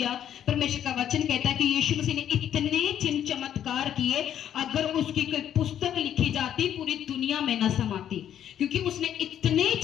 परमेश्वर का वचन कहता है कि यीशु मसीह ने इतने चिन्ह चमत्कार किए, अगर उसकी कोई पुस्तक लिखी जाती पूरी दुनिया में न समाती, क्योंकि उसने इतने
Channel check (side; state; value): right; quieter; 10.2 dB